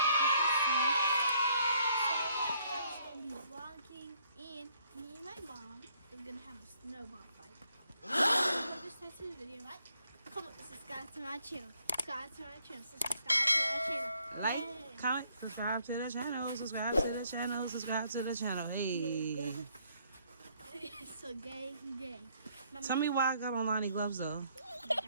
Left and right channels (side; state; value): both; inverted; correlation -0.68